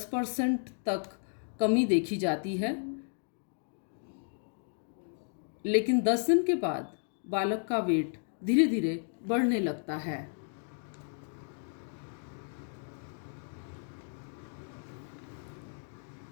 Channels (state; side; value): silent; right; 55 dB below the other